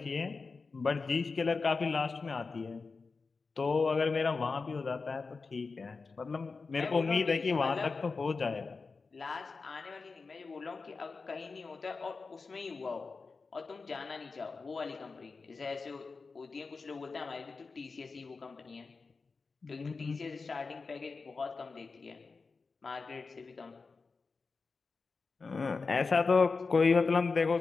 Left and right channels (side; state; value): right; quieter; 4.4 dB